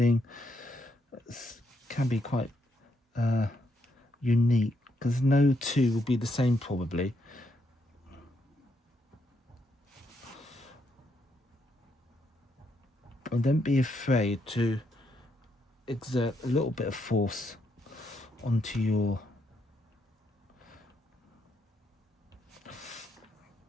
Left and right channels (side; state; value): both; normal; correlation 0.77